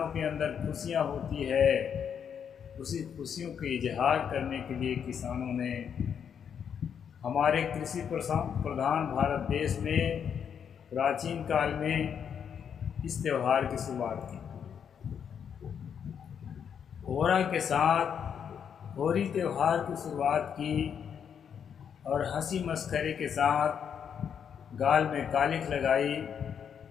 के अंदर खुशियाँ होती है। उसी खुशियों के इजहार करने के लिए किसानों ने हमारे कृषि प्रधान भारत देश में प्राचीन काल में इस त्यौहार की शुरुआत की। होरा के साथ होली त्यौहार की शुरुआत की और हंसी मस्खरे के साथ गाल में कालिख लगाई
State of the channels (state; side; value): quieter; right; 7.8 dB